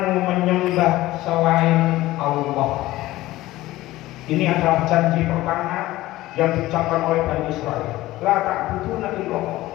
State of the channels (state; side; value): quieter; right; 17.0 dB